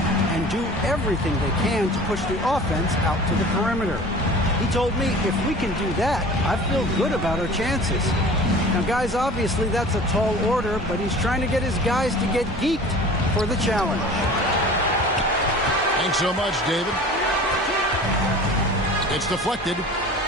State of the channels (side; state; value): both; normal; correlation 0.42